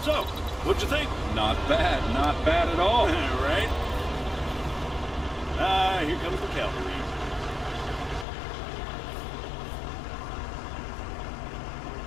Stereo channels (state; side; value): drops out; right; at 8.2 s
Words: So, what'd you think? Not bad at all. Right? Here comes the cavalry.